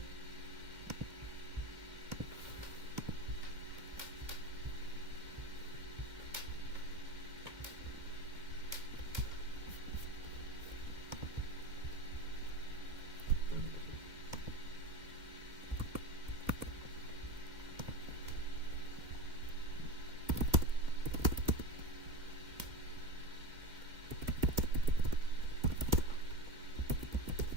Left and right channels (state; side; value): late; left; 2.1 ms